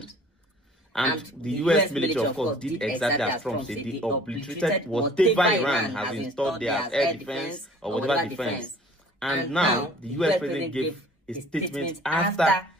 And the US military, of course, did exactly as Trump said. They obliterated whatever Iran has installed there as air defense or whatever defense. And now the US president gave a statement after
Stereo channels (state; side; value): normal; both; correlation 0.51